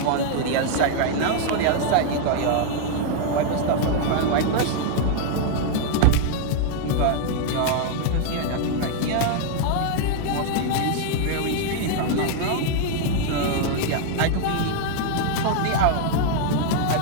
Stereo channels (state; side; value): different; both; correlation 0.00